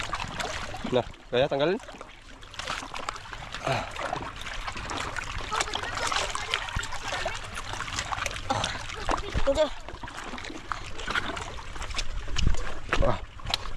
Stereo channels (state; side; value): identical; both; correlation 1.00